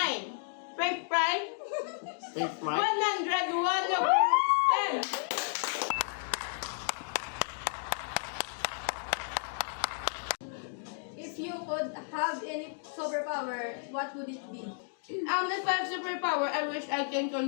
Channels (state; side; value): silent; right; digital silence